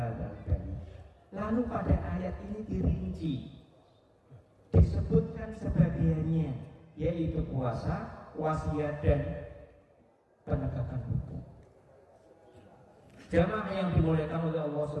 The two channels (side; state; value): both; identical; correlation 1.00